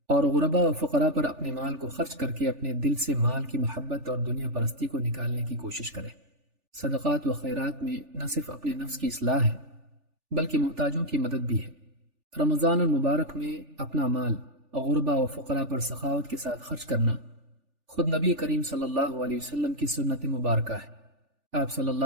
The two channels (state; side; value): late; left; 3.4 ms